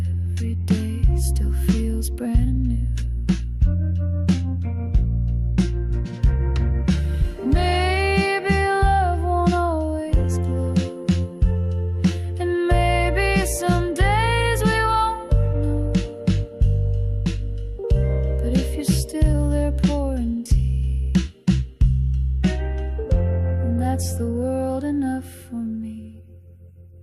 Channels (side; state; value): both; identical; correlation 1.00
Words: What's the world enough for me?